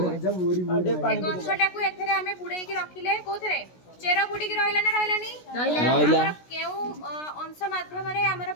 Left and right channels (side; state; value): right; late; 16 ms